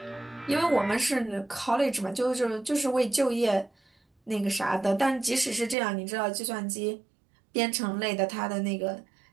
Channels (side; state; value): left; drops out; at 5.8 s